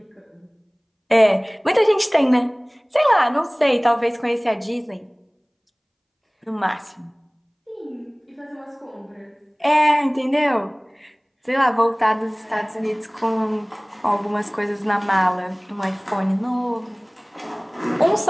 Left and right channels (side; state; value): both; identical; correlation 1.00